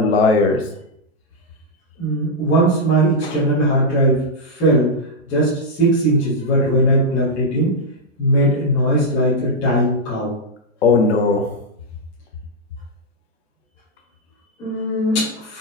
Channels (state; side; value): normal; both; correlation -0.02